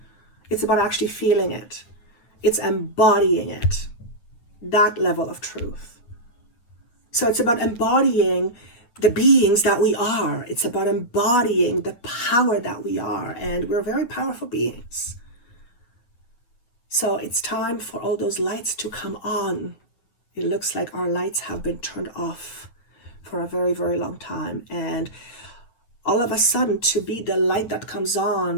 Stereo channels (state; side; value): late; right; 8.5 ms